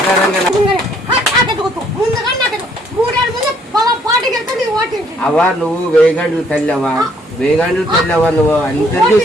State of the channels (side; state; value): both; normal; correlation 0.65